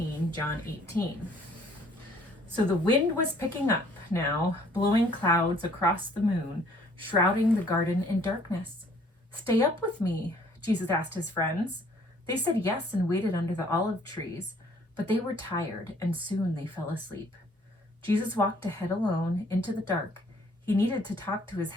John 18. So the wind was picking up now, blowing clouds across the moon, shrouding the garden in darkness. "Stay up with me," Jesus asked his friends. They said yes and waited under the olive trees, but they were tired and soon they fell asleep. Jesus walked ahead alone into the dark. He needed to talk to his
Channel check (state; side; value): normal; both; correlation 0.60